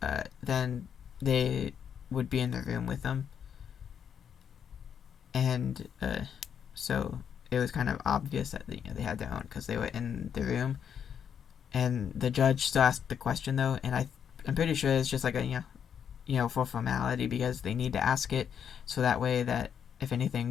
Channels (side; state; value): right; quieter; 8.0 dB